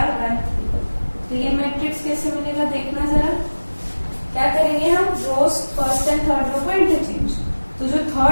तो ये मैट्रिक्स कैसे मिलेगा देखना जरा। क्या करेंगे हम? रोज फर्स्ट एंड थर्ड रो को इंटरचेंज। तो जो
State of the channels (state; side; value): inverted; both; correlation -1.00